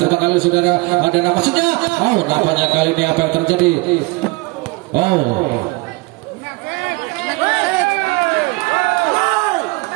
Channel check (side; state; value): left; quieter; 24.9 dB